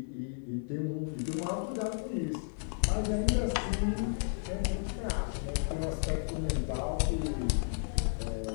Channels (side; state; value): right; silent; 56 dB below the other